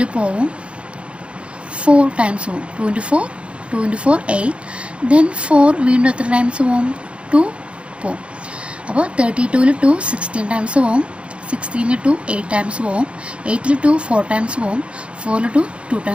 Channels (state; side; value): late; left; 0.059 ms